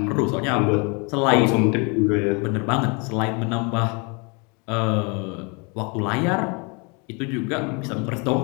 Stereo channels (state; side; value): quieter; right; 32.0 dB